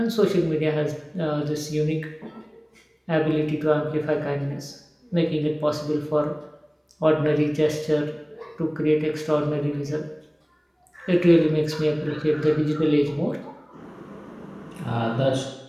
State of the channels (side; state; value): both; identical; correlation 1.00